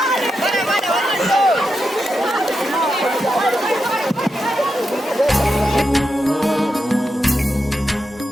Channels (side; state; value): both; normal; correlation 0.87